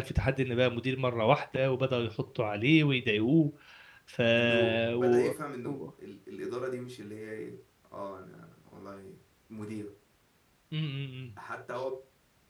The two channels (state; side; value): identical; both; correlation 1.00